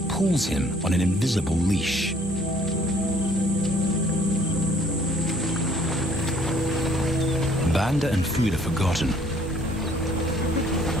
pulls him on an invisible leash. Banda and food are forgotten.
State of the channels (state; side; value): normal; both; correlation 0.60